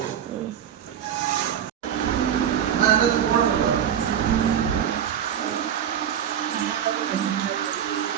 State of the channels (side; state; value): left; quieter; 9.2 dB